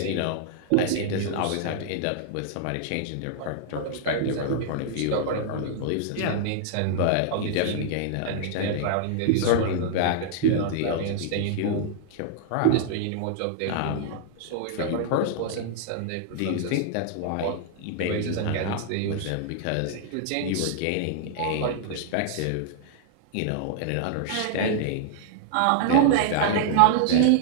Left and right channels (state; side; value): different; both; correlation -0.01